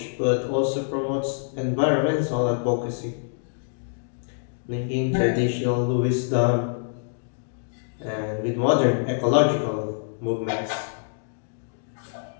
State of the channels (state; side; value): silent; right; digital silence